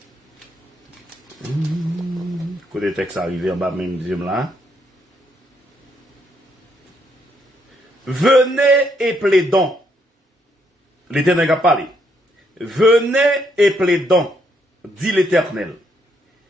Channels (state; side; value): normal; both; correlation 0.74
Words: Côté texte arrivé en bas, même deuxième là. Venez et plaidons. L'Éternel a parlé. Venez et plaidons, dit l'Éternel.